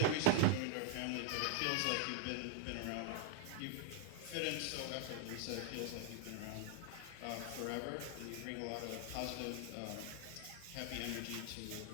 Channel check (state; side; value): different; both; correlation 0.00